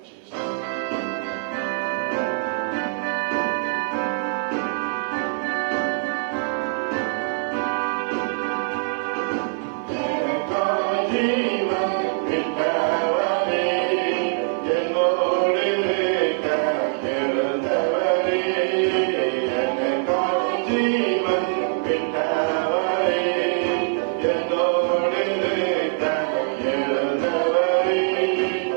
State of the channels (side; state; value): left; silent; digital silence